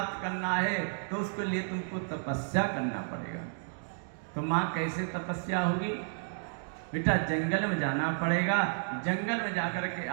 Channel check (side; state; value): left; silent; digital silence